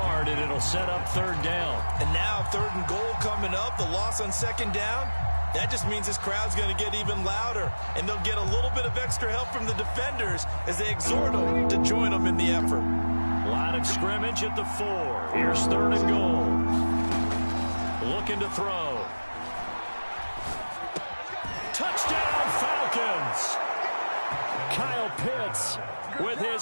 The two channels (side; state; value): both; inverted; correlation -1.00